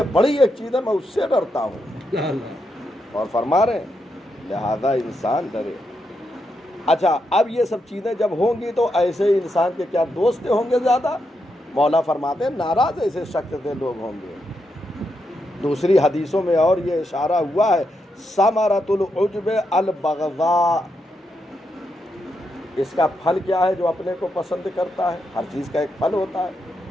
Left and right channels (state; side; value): normal; both; correlation 0.83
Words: بڑی ایک چیز ہے میں اس سے ڈرتا ہوں، اور فرما رہے ہیں لہذا انسان ڈرے۔ اچھا، اب یہ سب چیزیں جب ہوں گی تو ایسے انسان کے کیا دوست ہوں گے زیادہ؟ مولا فرماتے ہیں ناراض ایسے شخص سے لوگ ہوں گے۔ دوسری حدیثوں میں اور یہ اشارہ ہوا ہے ثمرۃ العجب البغضاء، اس کا پھل کیا ہے؟ جو اپنے کو پسند کرتا ہے، ہر چیز کا ایک پھل ہوتا ہے،